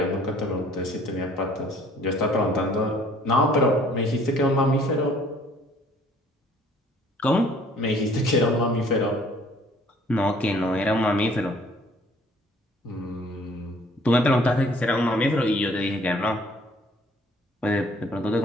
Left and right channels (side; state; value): both; normal; correlation 0.57